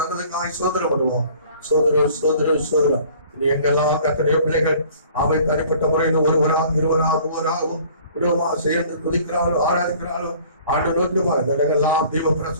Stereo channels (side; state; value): both; inverted; correlation -0.52